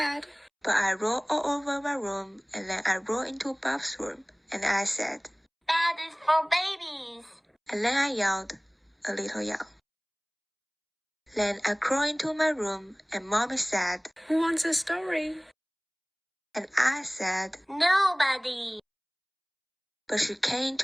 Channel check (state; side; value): identical; both; correlation 1.00